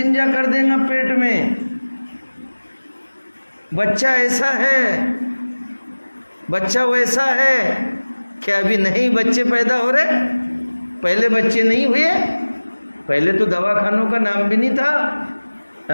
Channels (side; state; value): both; inverted; correlation -1.00